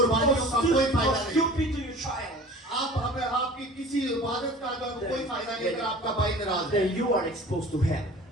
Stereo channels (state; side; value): normal; both; correlation 0.43